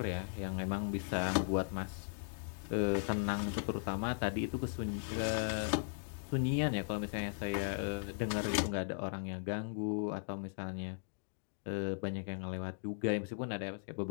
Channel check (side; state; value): right; silent; digital silence